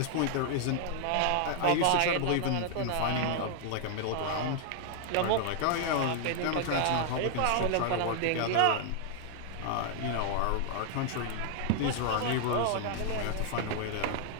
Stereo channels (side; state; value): both; different; correlation -0.01